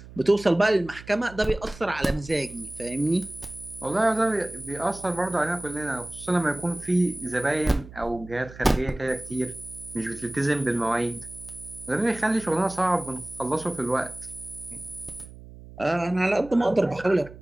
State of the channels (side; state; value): right; noise; hum, 17 dB below the sound